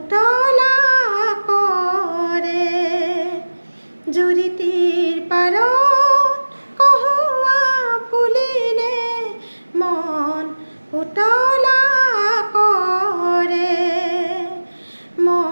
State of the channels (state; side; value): inverted; both; correlation -1.00